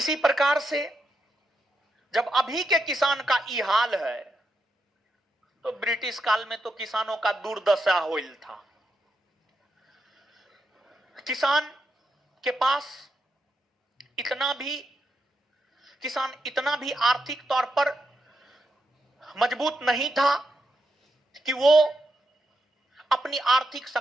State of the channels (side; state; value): both; normal; correlation 0.84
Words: प्रकार से जब अभी के किसान का ये हाल है, तो ब्रिटिश काल में तो किसानों का दुर्दशा होइल था। किसान के पास किसान इतना भी आर्थिक तौर पर मजबूत नहीं था कि वो अपनी आर्थिक